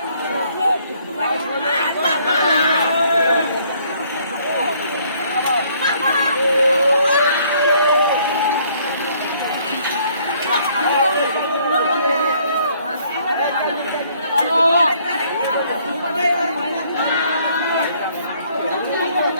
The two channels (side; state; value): both; inverted; correlation -0.63